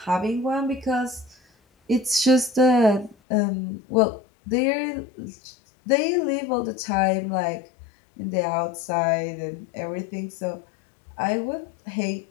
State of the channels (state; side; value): drops out; right; at 3.2 s